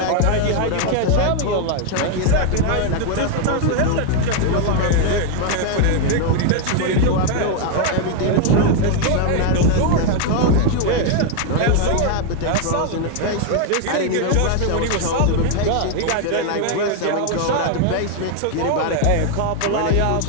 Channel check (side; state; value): both; different; correlation 0.01